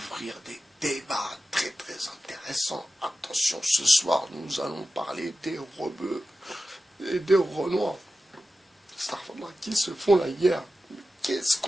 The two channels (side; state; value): both; normal; correlation 0.93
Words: des débats très très intéressants. Attention, ce soir, nous allons parler des rebeux et des renois. Starfall qui se font la guerre. Qu'est-ce